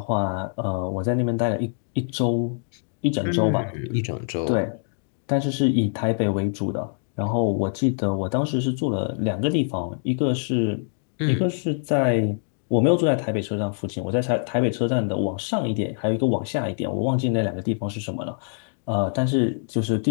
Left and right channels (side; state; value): right; silent; 62 dB below the other